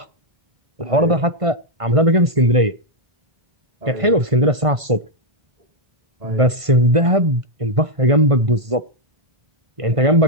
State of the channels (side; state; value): left; late; 1.5 ms